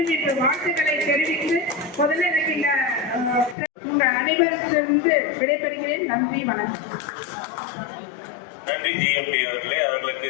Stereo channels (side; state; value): right; drops out; at 3.6 s